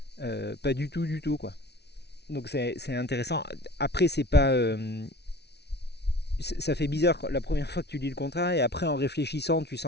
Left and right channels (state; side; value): late; right; 0.49 ms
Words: Pas du tout, du tout, quoi. Donc c'est intéressant. Après, c'est pas. Ça fait bizarre la première fois que tu lis le contrat, et après, en réfléchissant, tu